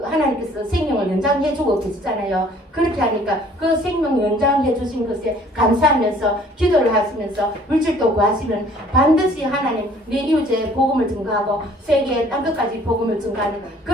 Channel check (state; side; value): normal; both; correlation 0.55